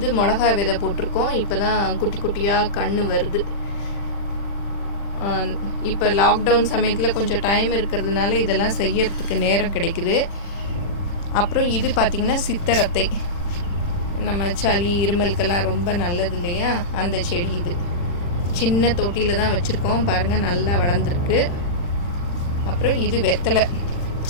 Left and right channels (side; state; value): right; late; 40 ms